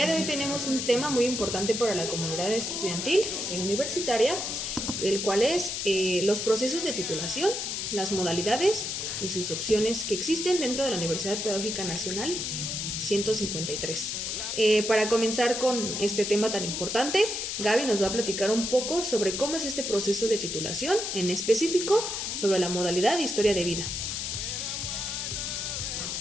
de hoy tenemos un tema muy importante para la comunidad estudiantil y universitaria, el cual es los procesos de titulación, las modalidades y sus opciones que existen dentro de la Universidad Pedagógica Nacional 153. Para comenzar con este tema tan importante, Gaby nos va a platicar un poco sobre cómo es este proceso de titulación, en específico sobre la modalidad de historia de vida.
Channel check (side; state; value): left; noise; hiss, 3 dB below the sound